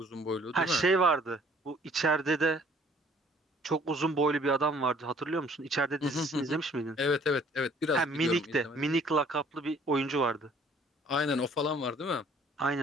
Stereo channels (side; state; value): both; normal; correlation 0.57